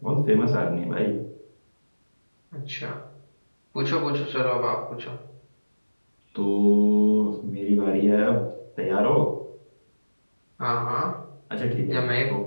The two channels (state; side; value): inverted; both; correlation -1.00